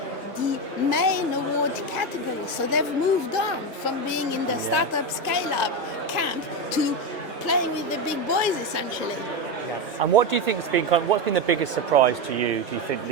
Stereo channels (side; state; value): both; normal; correlation 0.13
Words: the main award category. So they've moved on from being in the startup scale-up camp to playing with the big boys, essentially. Yes. And what do you think has been what's been the biggest surprise to you, do you think,